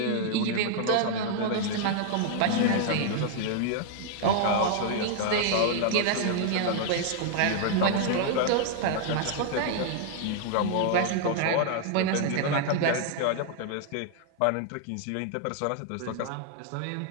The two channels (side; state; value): both; different; correlation 0.00